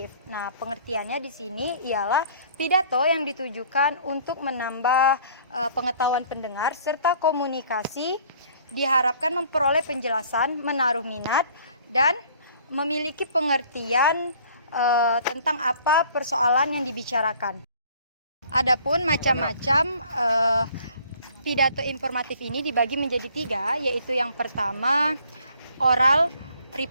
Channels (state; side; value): inverted; both; correlation -0.55